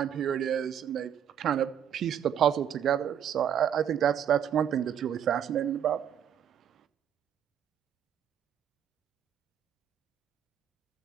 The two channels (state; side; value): quieter; left; 9.2 dB